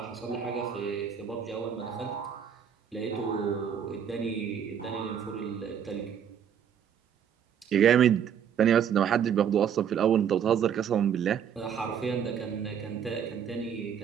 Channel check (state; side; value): quieter; left; 8.2 dB